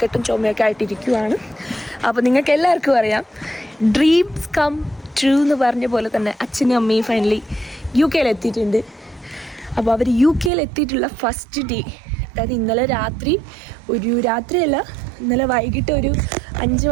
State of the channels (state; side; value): drops out; left; at 10.5 s